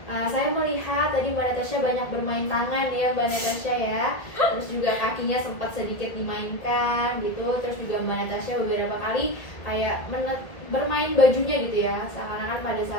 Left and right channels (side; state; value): right; late; 2.0 ms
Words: saya melihat tadi Mbak Natasha banyak bermain tangan ya Mbak Natasha ya, terus juga kakinya sempat sedikit dimainkan gitu, terus juga Mbak Natasha beberapa kali kayak bermain bajunya gitu ya, seakan-akan pada